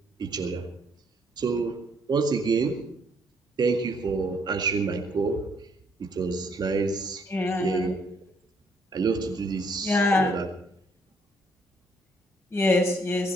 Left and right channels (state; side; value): normal; both; correlation 0.68